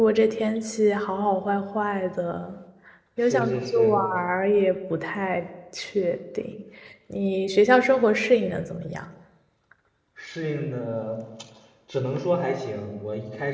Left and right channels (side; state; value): both; identical; correlation 1.00